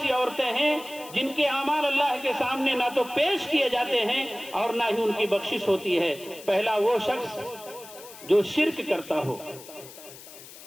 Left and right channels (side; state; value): left; noise; hiss, 17 dB below the sound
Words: عورتیں ہیں جن کے اعمال اللہ کے سامنے نہ تو پیش کیے جاتے ہیں اور نہ ہی ان کی بخشش ہوتی ہے۔ پہلا وہ شخص جو شرک کرتا ہو،